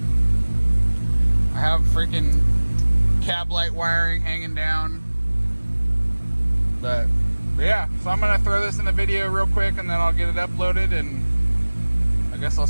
I have freaking cab light wiring hanging down. But yeah, so I'm gonna throw this in the video real quick and then I'll get it uploaded, and I guess I'll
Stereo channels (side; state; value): both; inverted; correlation -1.00